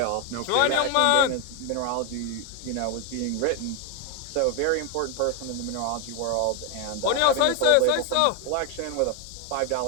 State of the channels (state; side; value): different; both; correlation 0.01